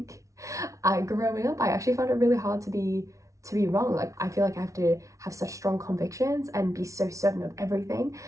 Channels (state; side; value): late; left; 0.15 ms